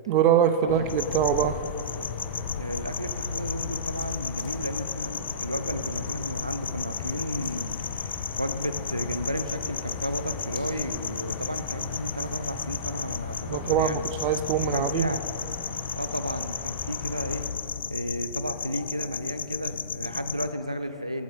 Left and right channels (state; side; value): inverted; both; correlation -0.37